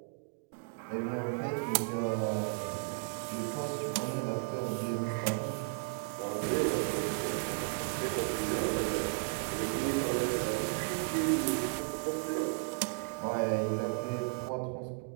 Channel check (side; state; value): left; silent; digital silence